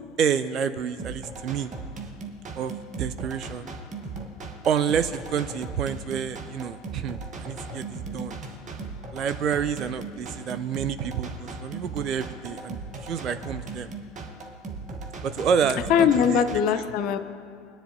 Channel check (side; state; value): both; normal; correlation 0.45